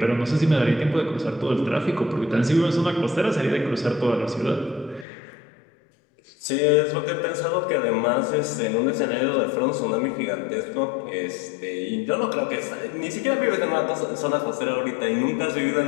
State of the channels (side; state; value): right; drops out; at 5.1 s